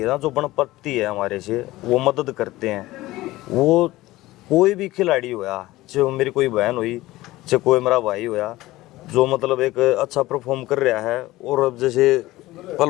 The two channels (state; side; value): quieter; right; 17.9 dB